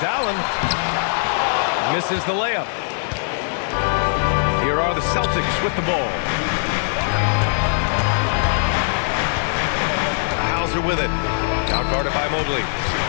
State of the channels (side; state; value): right; silent; digital silence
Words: Allen. Misses the layup. Here are the Celtics with the ball. Hauser with it. Now guarded by Mobley.